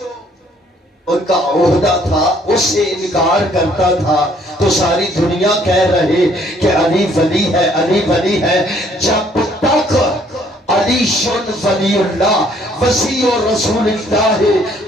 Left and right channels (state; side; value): normal; both; correlation 0.63